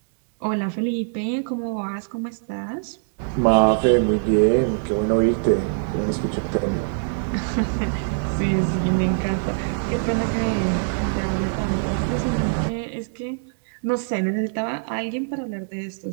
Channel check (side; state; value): left; silent; 63 dB below the other